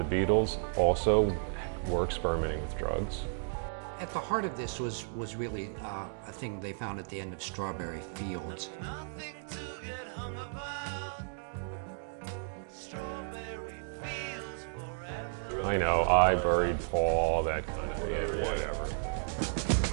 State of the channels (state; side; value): silent; left; digital silence